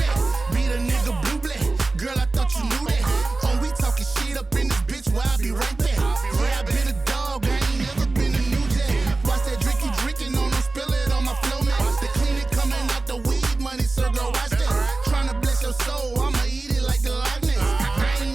Be the nigga blue black. Girl, I thought you knew that. Oh, we talking shit up in this bitch where I be right there. Yeah, I been a dog, I ain't never been a new jack. Watch that drink you drinking on them, spill it on my flow, man. The clean it coming out the weed money, so girl, watch that. Tryna bless your soul, I'ma eat it like the Loch Ness. I ain't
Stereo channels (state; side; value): quieter; left; 3.4 dB